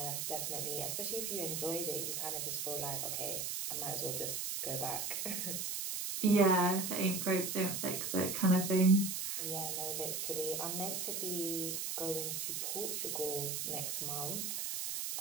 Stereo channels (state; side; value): noise; right; hiss, 2 dB below the sound